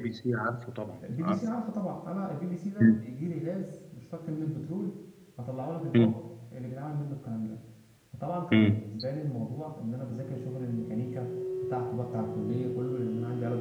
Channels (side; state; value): both; identical; correlation 1.00